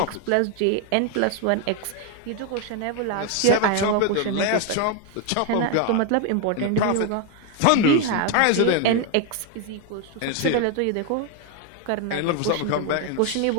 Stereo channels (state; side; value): different; both; correlation 0.01